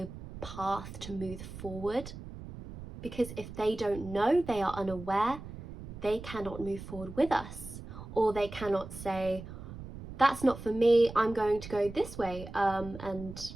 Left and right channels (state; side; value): noise; right; rumble, 12 dB below the sound